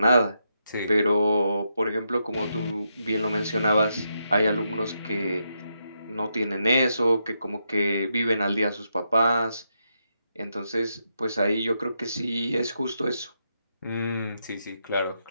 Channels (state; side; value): inverted; both; correlation -0.83